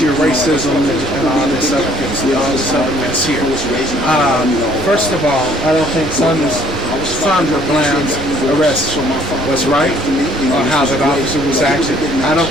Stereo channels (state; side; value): normal; both; correlation 0.60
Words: of racism and all this other mess here. First of all, I don't think Sandra Bland's arrest was right, or how that officer was acting. I